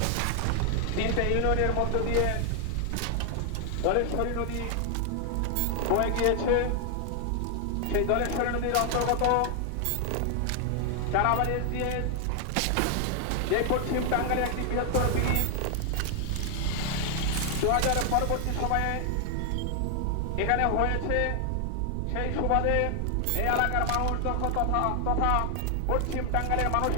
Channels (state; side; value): different; both; correlation 0.00